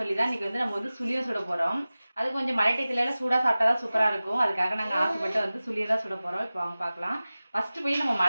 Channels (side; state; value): both; inverted; correlation -0.97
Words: தான் இன்றைக்கி வந்து நம்ம வந்து சுழியம் சுட போகிறோம். அது கொஞ்சம் மழை டயத்துலலாம் சூடாக சாப்பிட்டா தான் சூப்பராக இருக்கும். அதுக்காக நாங்கள் ஆசைப்பட்டு வந்து சுழியம் தான் சுட போகிறோம். இப்போ அவங்க பார்க்கலாம். ஃபஸ்ட்டு போய் நம்ம